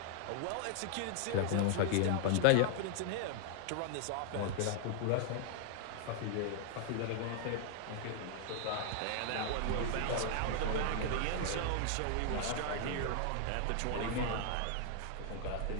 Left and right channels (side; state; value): both; different; correlation 0.00